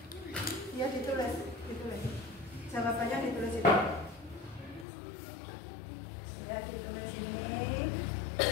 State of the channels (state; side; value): drops out; right; at 4.9 s